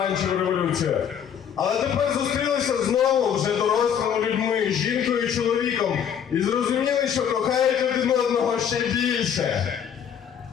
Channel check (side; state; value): right; quieter; 8.4 dB